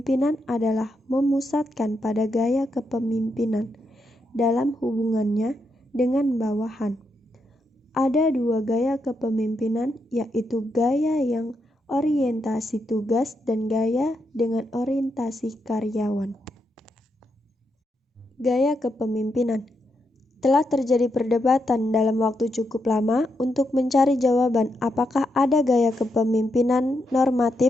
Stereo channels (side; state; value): both; normal; correlation 0.82